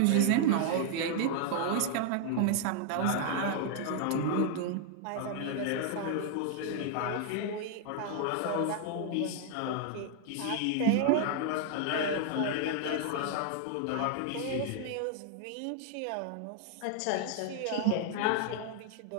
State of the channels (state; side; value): different; both; correlation 0.00